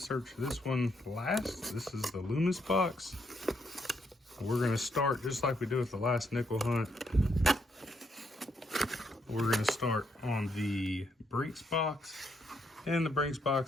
this one last. This is the Loomis box. We're gonna start just like we did with the last nickel hunt. We're gonna start on the Brinks box. And the Brinks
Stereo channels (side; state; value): both; normal; correlation 0.76